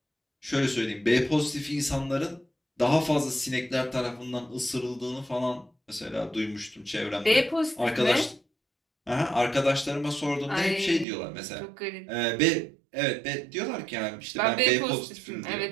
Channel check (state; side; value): drops out; left; at 11.1 s